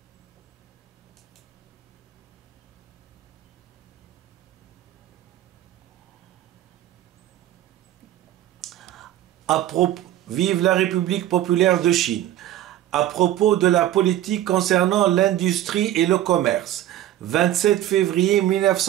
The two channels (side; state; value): left; quieter; 13.0 dB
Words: Vive la République populaire de Chine. À propos de la politique concernant l'industrie et le commerce, 27 février